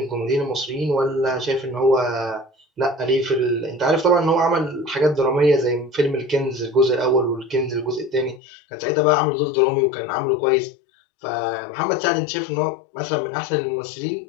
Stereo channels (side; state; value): right; drops out; at 8.4 s